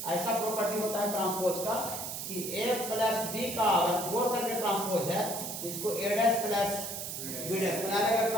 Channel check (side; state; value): right; noise; hiss, 6 dB below the sound